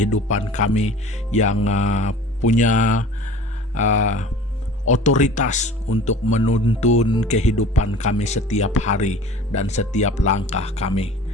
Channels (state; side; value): normal; both; correlation 0.43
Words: kami, yang punya otoritas untuk menuntun kehidupan kami setiap hari dan setiap langkah kami.